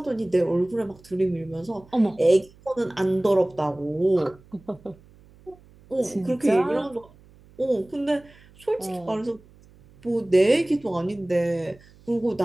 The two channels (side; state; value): right; noise; hum, 26 dB below the sound